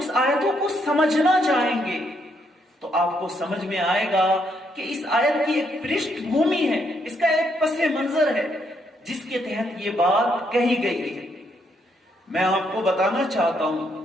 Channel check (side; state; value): both; normal; correlation 0.75